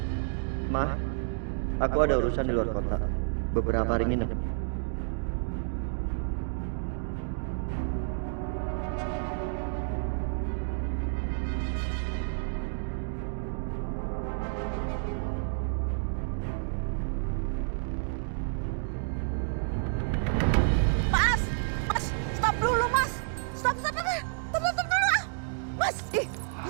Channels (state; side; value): silent; left; digital silence